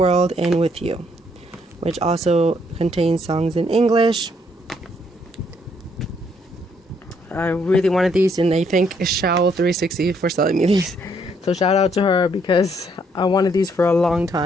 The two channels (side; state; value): both; normal; correlation 0.70